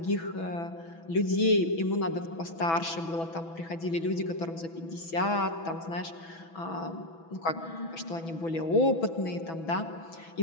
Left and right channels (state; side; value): late; right; 6.1 ms